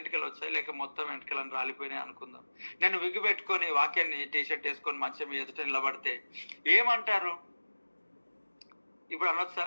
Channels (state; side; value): inverted; both; correlation -1.00